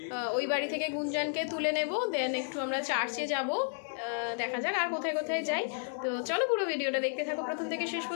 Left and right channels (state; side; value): silent; right; digital silence